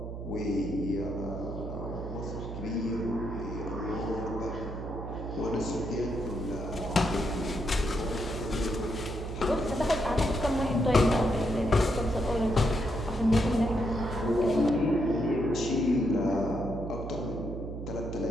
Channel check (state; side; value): noise; right; hum, 7 dB below the sound